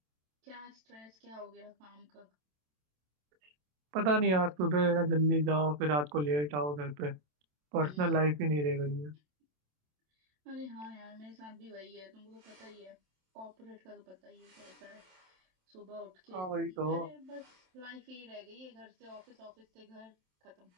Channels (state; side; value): late; left; 27 ms